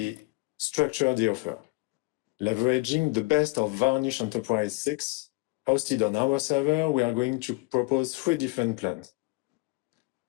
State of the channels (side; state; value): right; quieter; 25.3 dB